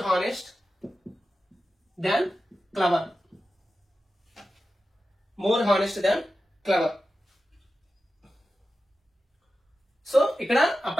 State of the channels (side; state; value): both; normal; correlation 0.93